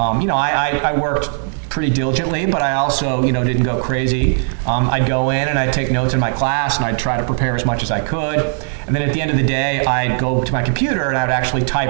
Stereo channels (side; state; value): left; silent; digital silence